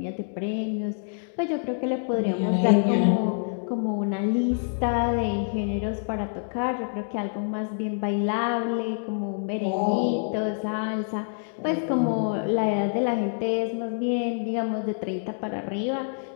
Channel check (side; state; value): right; silent; digital silence